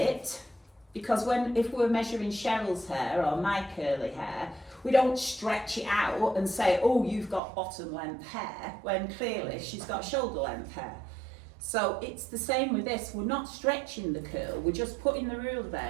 because if we're measuring Cheryl's hair or my curly hair, we don't stretch it out and say, oh, you've got bottom length hair, when clearly she's got shoulder length hair. So it's the same with this. We're not stretching the curl, we're just putting the ruler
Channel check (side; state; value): left; drops out; at 7.4 s